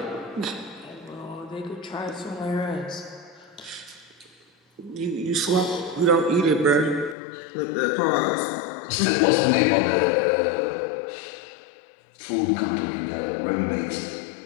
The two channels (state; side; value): drops out; right; at 7.2 s